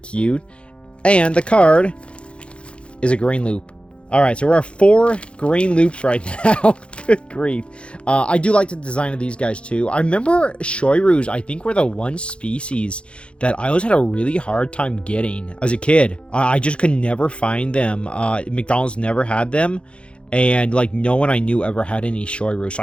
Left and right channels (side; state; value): right; late; 0.058 ms